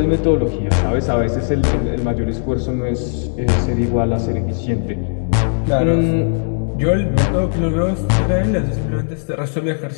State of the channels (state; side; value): silent; right; digital silence